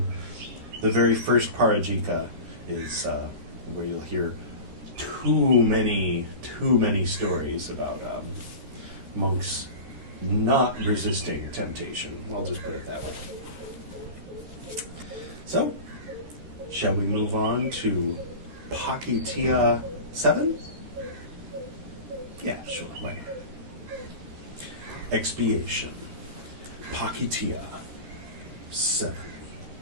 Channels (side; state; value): left; late; 13 ms